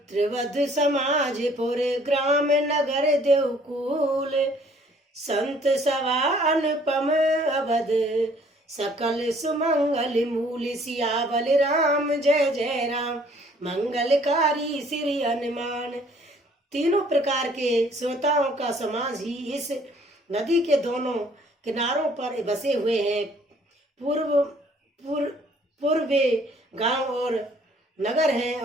समाज पुर ग्राम नगर देवकुल संत सवा अनुपम अवध सकल सुमंगल मूल सियावल राम जय जय राम मंगलकारी श्री हनुमान। तीनों प्रकार के श्रोताओं का समाज ही इस नदी के दोनों किनारों पर बसे हुए हैं। पूर्वे गांव और नगर हैं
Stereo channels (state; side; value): normal; both; correlation 0.59